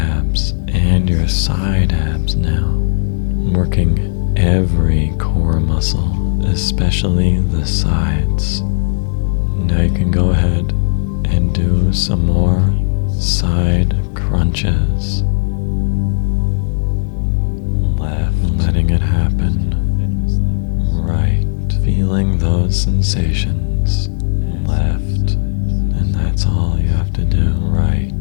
and your side abs now, working every core muscle, especially the sides. Now you can go ahead and do some more side crunches. Left, letting it happen. Right, feeling those sensations. Left, and that's all you have to do. Right,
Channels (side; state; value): right; silent; digital silence